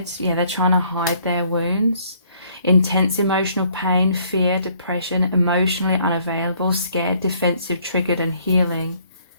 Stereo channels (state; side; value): inverted; both; correlation -0.64